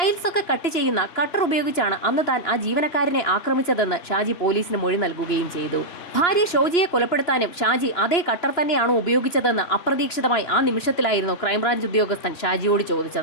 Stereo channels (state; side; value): late; right; 2.9 ms